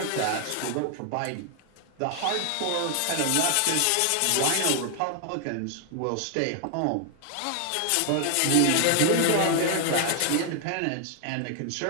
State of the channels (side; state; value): both; different; correlation 0.00